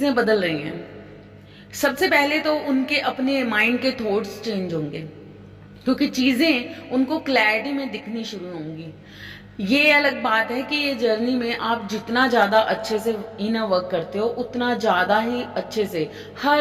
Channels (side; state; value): both; identical; correlation 1.00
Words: बदल रही हैं। सबसे पहले तो उनके अपने माइंड के थॉट्स चेंज होंगे, क्योंकि चीजें उनको क्लैरिटी में दिखनी शुरू होंगी। ये अलग बात है कि ये जर्नी में आप जितना ज्यादा अच्छे से इनर वर्क करते हो उतना ज्यादा ही अच्छे से